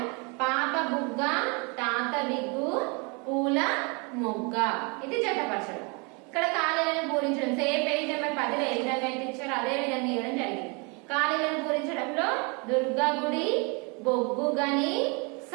పాప బుగ్గ, తాత విగ్గు, పూల మొగ్గ. ఇది జతపరచడం. ఇక్కడ ఖాళీలను పూరించడం సేమ్ పేజ్ నెంబర్ 10 లో ఏ విధంగా అయితే ఇచ్చారో అదే విధంగా ఇవ్వడం జరిగింది. ఖాళీలను పూరించడంలో దుర్గా గుడి, బొగ్గు గని,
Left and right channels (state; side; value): quieter; left; 31.7 dB